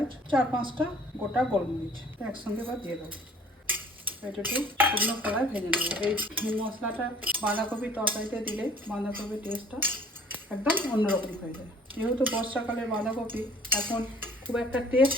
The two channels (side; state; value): both; normal; correlation 0.54